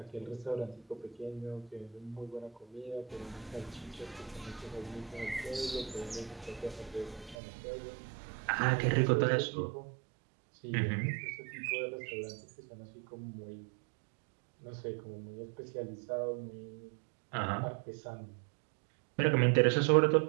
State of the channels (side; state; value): left; drops out; at 7.4 s